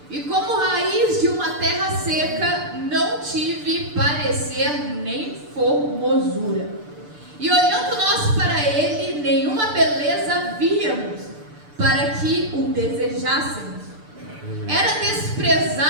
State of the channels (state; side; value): late; left; 6.8 ms